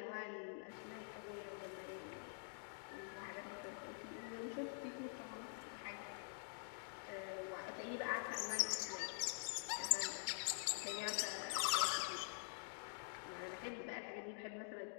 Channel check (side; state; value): right; silent; digital silence